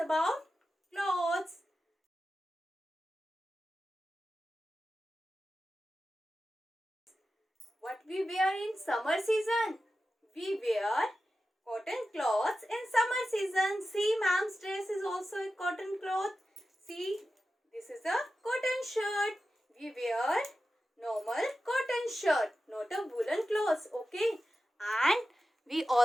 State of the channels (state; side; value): normal; both; correlation 0.93